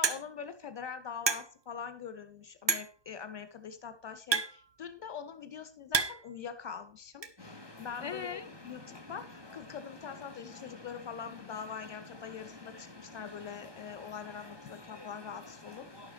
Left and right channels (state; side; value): late; left; 1.2 ms